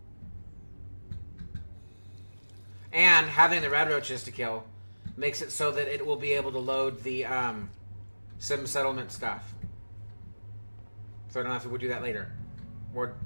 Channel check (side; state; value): both; inverted; correlation -1.00